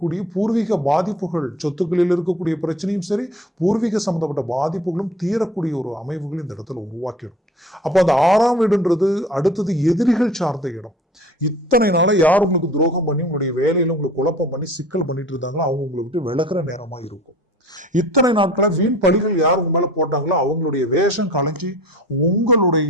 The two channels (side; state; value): both; normal; correlation 0.45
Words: பூர்வீக பாதிப்புகள், சொத்துக்களில் இருக்கக்கூடிய பிரச்சனையும் சரி, பூர்வீக சம்பந்தப்பட்ட பாதிப்புகளும் தீரக்கூடிய ஒரு அமைவுகள் இந்த இடத்துல உருவாக்கிடும். அப்போ அந்த 6ஆம் வீடுன்றது அடுத்தது எதிரிகள் சார்ந்த இடம். இத்தனை நாள யார் உங்களுக்கு துரோகம் பண்ணி உங்களுடைய வேலையில உங்களுக்கு குழப்பம் பண்ணி சிக்கல் பண்ணிட்டு இருந்தாங்களோ அவங்க உங்களை விட்டு விலகிற நேரமா இருக்கும். இத்தனை நாட்கள வீண் பழிகள் யார் உங்க மேல போட்டாங்களோ அவங்களுடைய வேஷம் கலைஞ்சி